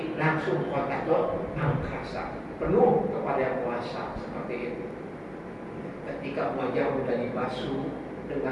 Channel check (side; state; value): both; identical; correlation 1.00